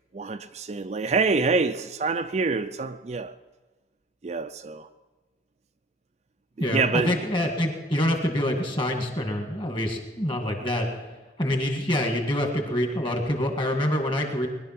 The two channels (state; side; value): normal; both; correlation 0.52